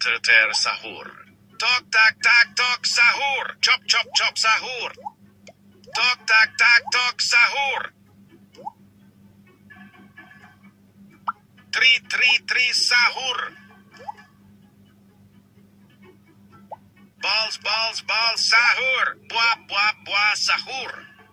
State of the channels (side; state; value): both; identical; correlation 1.00